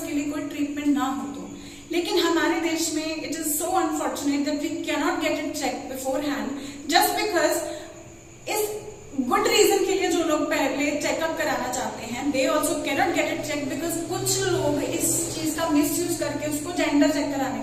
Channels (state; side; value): identical; both; correlation 1.00